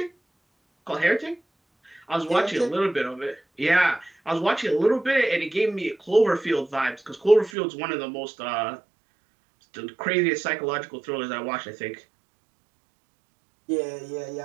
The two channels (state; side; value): drops out; left; at 7.5 s